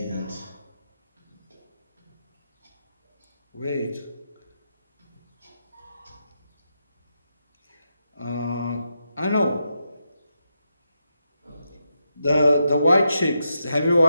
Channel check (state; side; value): inverted; both; correlation -0.85